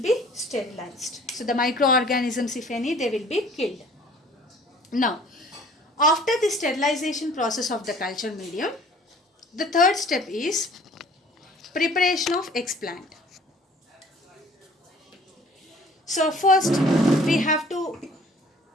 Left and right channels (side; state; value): both; normal; correlation 0.52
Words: be sterilized. So the microorganisms, if any, they will be killed. Now, after the sterilization process of the culture medium, the third step is preparation of explant. So first we have to